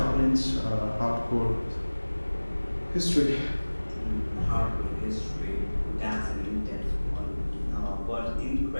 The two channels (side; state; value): both; inverted; correlation -1.00